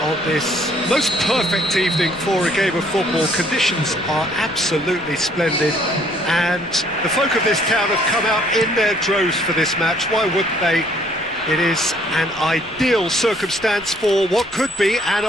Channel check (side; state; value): left; noise; rumble, 24 dB below the sound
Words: on this most perfect evening for a game of football. Conditions are absolutely splendid and the folk of this town have come out in their droves for this match. Why wouldn't they? It is an ideal circumstance for what could be an